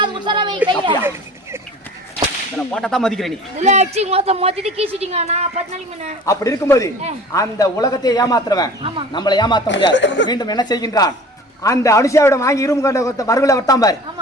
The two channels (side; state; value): both; normal; correlation 0.43